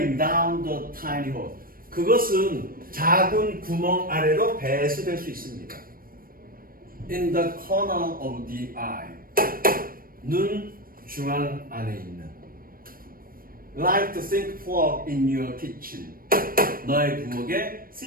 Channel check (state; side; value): late; left; 0.41 ms